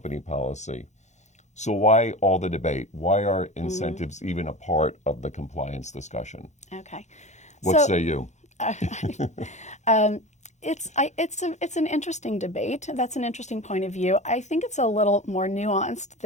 policy. So why all the debate? Why are incentives even a part of the compliance discussion? Okay. What say you? It's an interesting debate. That's an interesting point of view. I think it's a little more nuanced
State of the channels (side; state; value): right; late; 0.34 ms